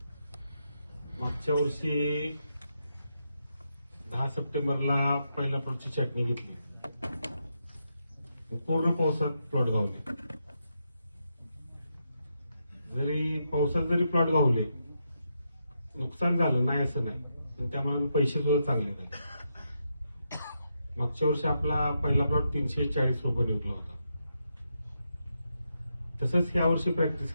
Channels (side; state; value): both; inverted; correlation -0.83